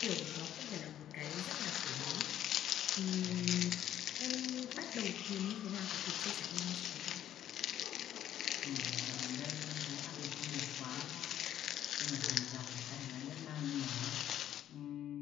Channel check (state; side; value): quieter; right; 11.3 dB